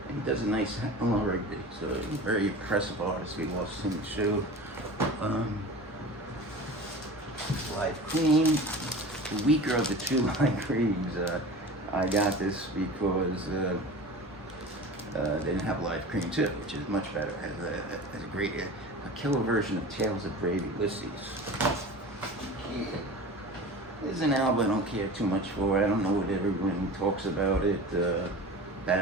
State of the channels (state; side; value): normal; both; correlation 0.35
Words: and he does a nice Eleanor Rigby. So a very impressive artist. We lost him too. Live Cream, the weaker of the two Live Creams. I got this because they didn't have Live Cream too, which is much better. Has a great a killer version of Tales of Brave Ulysses. Yeah. This is an album I don't care too much for. I don't know what everyone talks about it. Bat